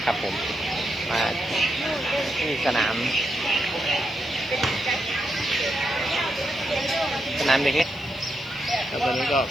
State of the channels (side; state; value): right; noise; hiss, 29 dB below the sound